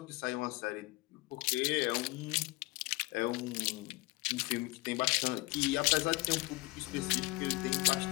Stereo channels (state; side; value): quieter; right; 22.7 dB